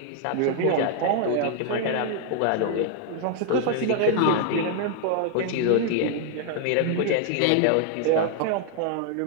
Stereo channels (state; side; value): different; both; correlation 0.00